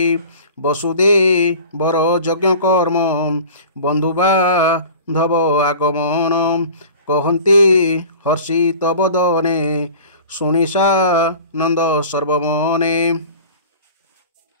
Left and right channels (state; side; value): inverted; both; correlation -0.41